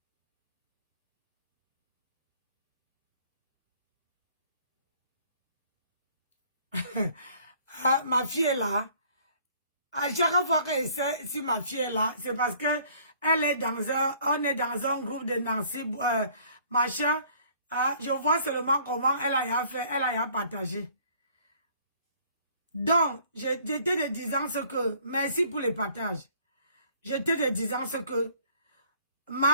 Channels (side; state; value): both; inverted; correlation -0.57